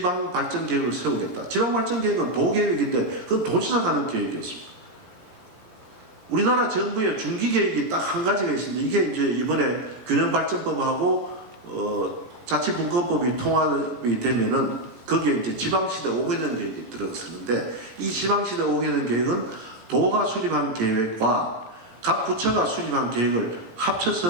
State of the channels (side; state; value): left; late; 18 ms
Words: 세우겠다. 지방발전계획은 도계획인데 그건 도지사가 하는 계획이었습니다. 우리나라 정부의 중기계획이 딱 한 가지가 있습니다. 이게 이제 이번에 균형발전법하고 자치분권법이 통합이 되면은 거기에 이제 지방시대 5개년 계획이 들어서는데 이 지방시대 5개년 계획은 도가 수립한 계획과 각 부처가 수립한 계획을